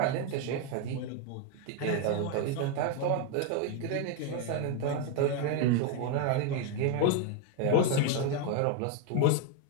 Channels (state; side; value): different; both; correlation 0.01